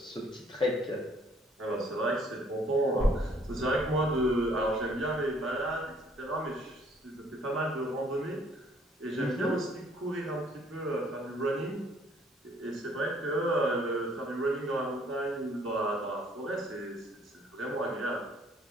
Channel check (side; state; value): both; normal; correlation 0.61